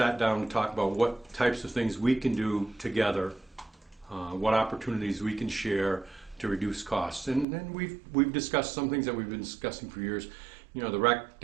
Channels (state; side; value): drops out; left; at 7.5 s